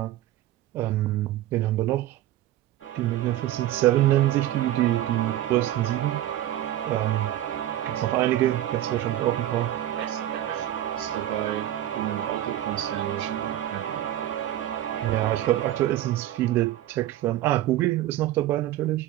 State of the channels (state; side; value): quieter; left; 13.4 dB